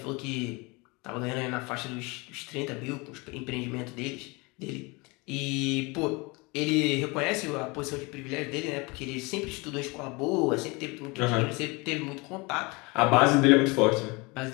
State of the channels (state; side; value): quieter; right; 26.5 dB